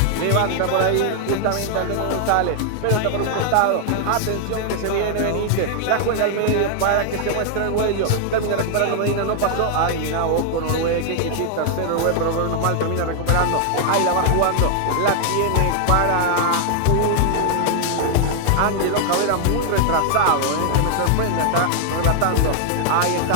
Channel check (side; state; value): both; different; correlation 0.00